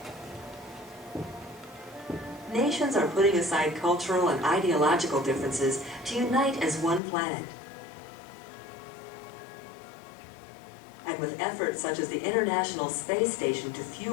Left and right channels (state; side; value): drops out; right; at 7.0 s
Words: Nations are putting aside cultural and ideological differences to unite as one planet. And with efforts such as the International Space Station to